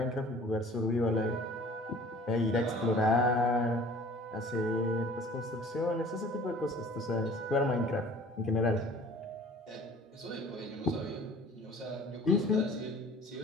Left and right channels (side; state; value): both; normal; correlation 0.48